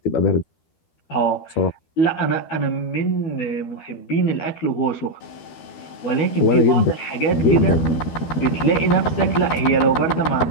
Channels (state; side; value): late; right; 12 ms